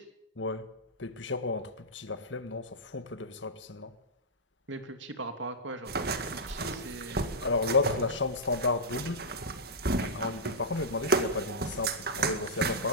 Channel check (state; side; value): normal; both; correlation -0.09